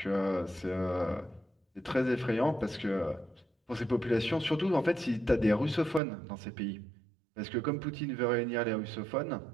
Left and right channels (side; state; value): left; drops out; at 6.0 s